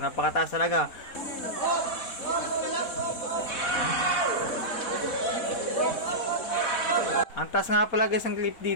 talaga. Ang taas nga pala guys ng clip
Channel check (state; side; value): late; right; 4.1 ms